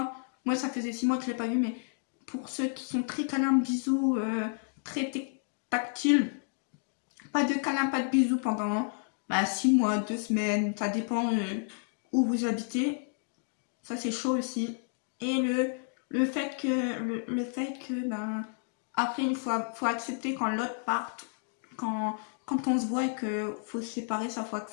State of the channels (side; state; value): right; silent; 57 dB below the other